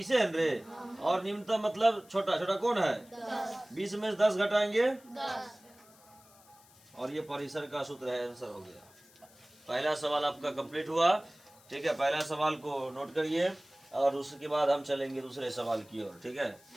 है रे। और निम्नतम मतलब छोटा। छोटा कौन है? 20 में से 10 घटाएंगे 10। और ये परिसर का सूत्र है। आंसर हो गया। पहला सवाल आपका कंप्लीट हुआ। ठीक है, पहला सवाल को नोट करिए और उसके बाद हम चलेंगे दूसरे सवाल की ओर। ठीक है,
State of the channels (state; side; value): noise; left; hiss, 26 dB below the sound